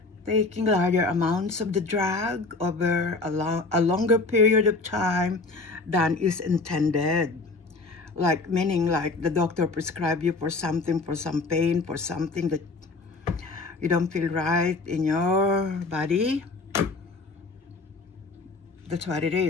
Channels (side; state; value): right; quieter; 3.7 dB